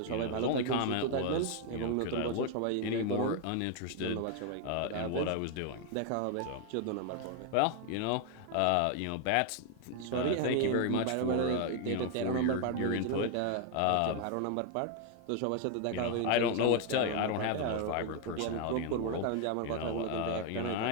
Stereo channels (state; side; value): different; both; correlation 0.00